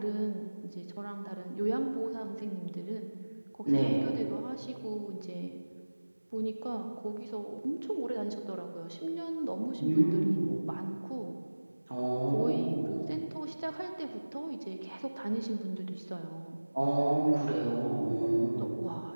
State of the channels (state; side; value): inverted; both; correlation -1.00